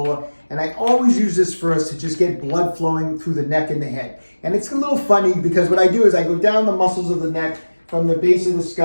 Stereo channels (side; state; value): both; inverted; correlation -1.00